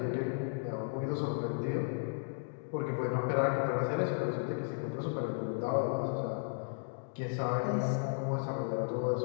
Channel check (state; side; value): silent; right; digital silence